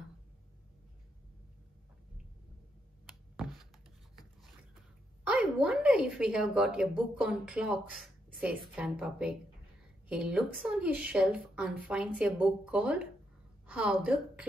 I wonder if we have got a book on clocks, says Grandpa Pig. He looks on his shelf and finds a book called How the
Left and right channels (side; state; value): both; normal; correlation 0.80